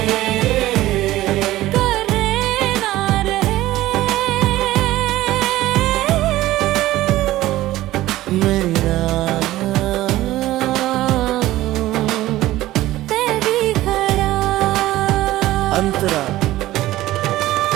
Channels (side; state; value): left; quieter; 16.0 dB